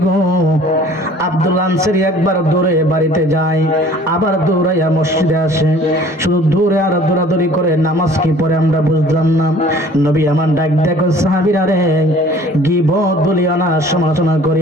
গো। আব্দুল্লাহ আনসারী একবার দৌড়ে বাড়িতে যায়, আবার দৌড়াইয়া মসজিদে আসে, শুধু দৌড়ে আর দৌড়াদৌড়ি করে, নামাজ কি পড়ে আমরা বুঝলাম না। নবী আমার ডাক দেখো, সাহাবীরা রে, গীবত বলিও না, সমালোচনা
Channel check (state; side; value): normal; both; correlation 0.51